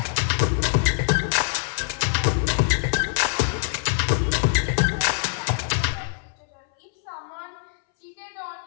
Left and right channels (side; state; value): right; silent; 63 dB below the other